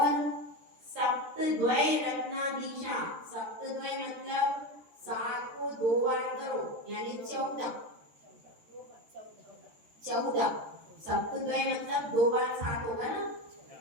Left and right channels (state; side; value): late; left; 13 ms